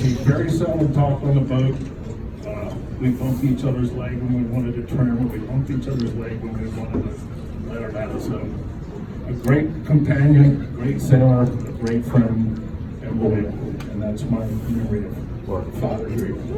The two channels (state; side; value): identical; both; correlation 1.00